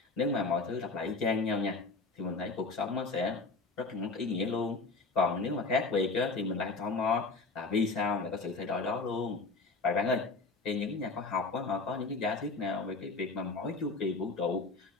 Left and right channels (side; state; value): right; quieter; 3.8 dB